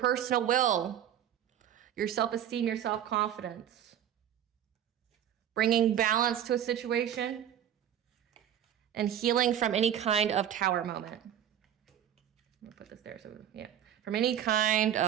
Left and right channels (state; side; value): quieter; left; 10.4 dB